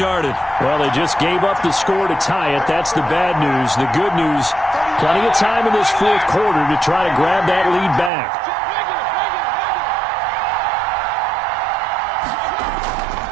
Well, they just gave up the score to tie it. That's the bad news. The good news, plenty of time in this 4th quarter to try to grab that lead back.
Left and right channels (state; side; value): drops out; left; at 8.1 s